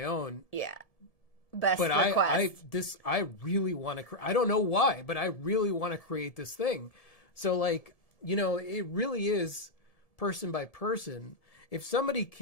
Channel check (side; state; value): right; late; 1.7 ms